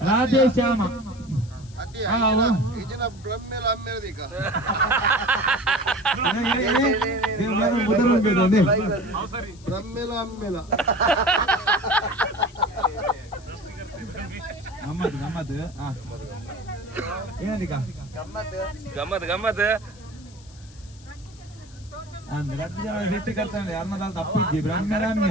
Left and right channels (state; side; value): noise; left; hiss, 24 dB below the sound